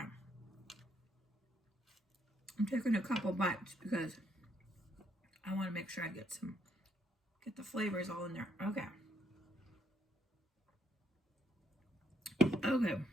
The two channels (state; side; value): normal; both; correlation 0.73